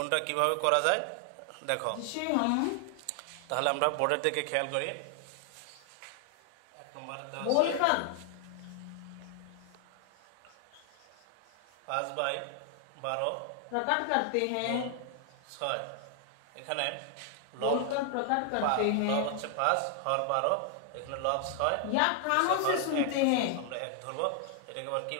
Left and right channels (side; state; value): both; different; correlation 0.00